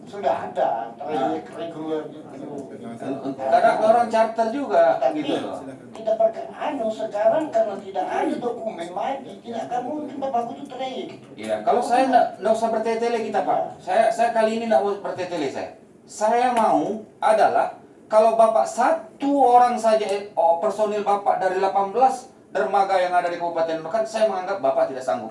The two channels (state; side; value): identical; both; correlation 1.00